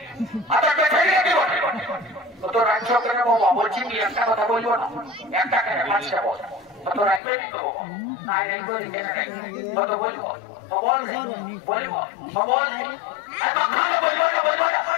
তো রাজ্য কেন বাবা বলছি কি একটা কথা বলবো না একটা কেন পাঁচটা বল তো রাজ্য কত বলবো বল বলবো বল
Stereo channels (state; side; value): drops out; right; at 7.2 s